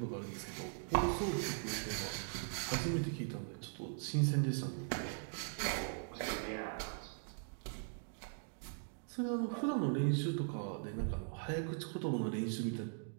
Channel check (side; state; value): left; silent; digital silence